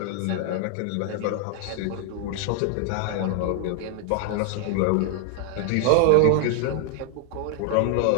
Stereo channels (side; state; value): both; different; correlation 0.00